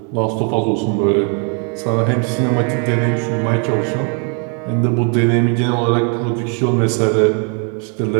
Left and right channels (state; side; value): quieter; left; 39.3 dB